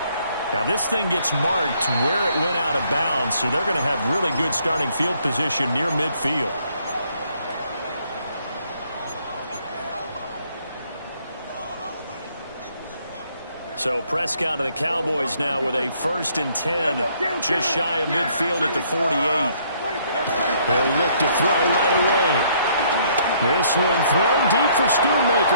Now this thing gets marked where it went out of bounds, so they're going to have really good starting field position near midfield. So Prescott of the Cowboys now with a 1st and 10, just shy of midfield at the 48. They'll look to throw right away. This one thrown deep for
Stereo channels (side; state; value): both; inverted; correlation -0.66